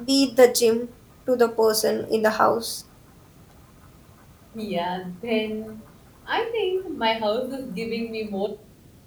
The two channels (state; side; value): identical; both; correlation 1.00